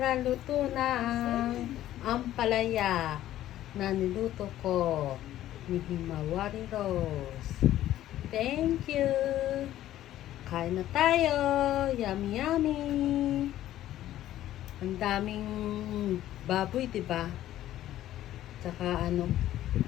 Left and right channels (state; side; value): quieter; right; 13.3 dB